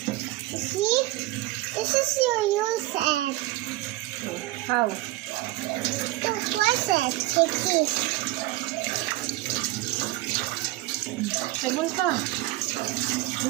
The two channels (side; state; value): left; quieter; 18.3 dB